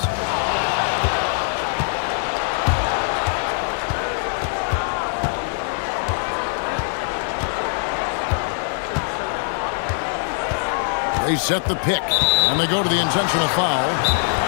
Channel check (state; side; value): silent; right; 61 dB below the other